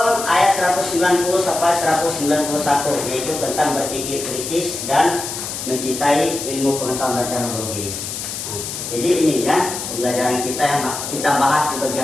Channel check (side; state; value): left; noise; hiss, 6 dB below the sound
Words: ayat 190 sampai 191, yaitu tentang berpikir kritis dan mencintai ilmu pengetahuan dan teknologi. Jadi ini ya pembelajaran kita yang kita bahas di pagi